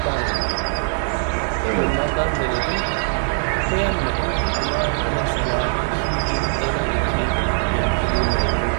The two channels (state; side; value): silent; left; digital silence